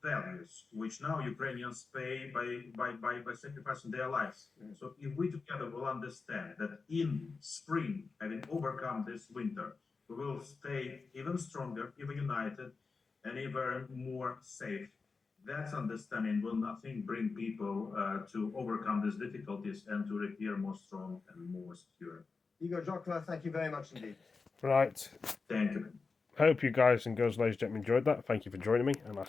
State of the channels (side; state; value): right; quieter; 4.5 dB